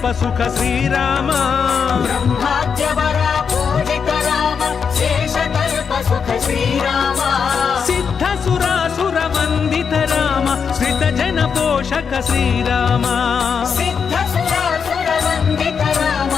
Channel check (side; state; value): right; quieter; 6.4 dB